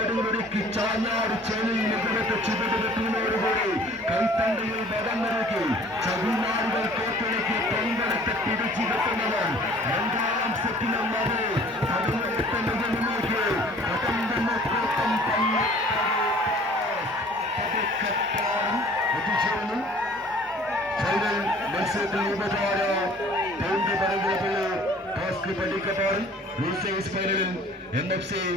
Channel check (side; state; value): both; normal; correlation 0.51